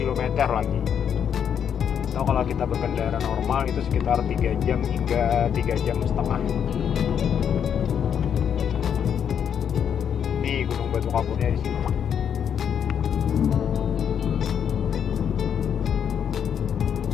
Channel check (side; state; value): right; quieter; 8.2 dB